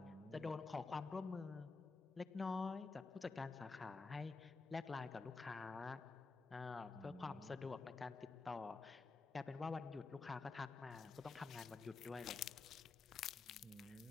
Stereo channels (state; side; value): quieter; right; 4.1 dB